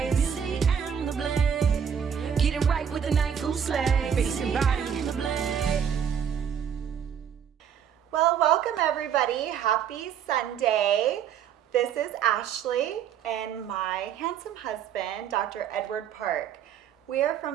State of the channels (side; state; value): left; quieter; 8.2 dB